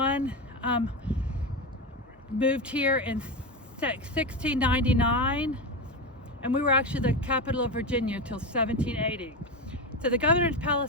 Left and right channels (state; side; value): normal; both; correlation 0.17